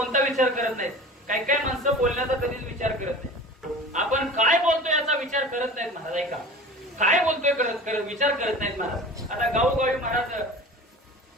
विचार करत नाही, काही काही माणसं बोलण्याचा कधीच विचार करत नाही. आपण काय बोलतोय याचा विचार करत नाहीत महाराज. ऐका, काय बोलतोय करत विचार करत नाहीत महाराज. आता गावोगावी महाराज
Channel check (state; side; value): normal; both; correlation 0.38